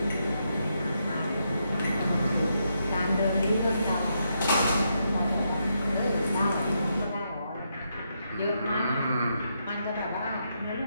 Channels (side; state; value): both; inverted; correlation -0.81